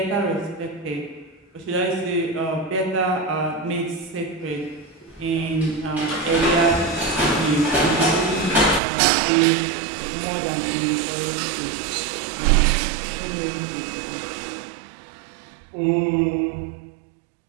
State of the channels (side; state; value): left; drops out; at 8.8 s